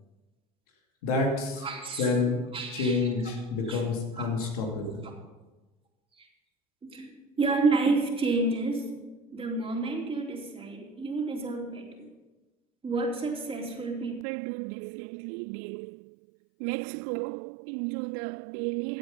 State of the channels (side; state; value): left; drops out; at 14.2 s